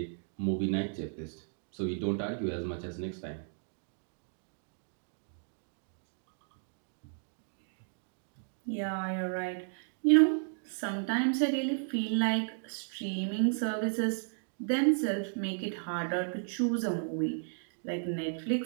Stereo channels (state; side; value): silent; left; digital silence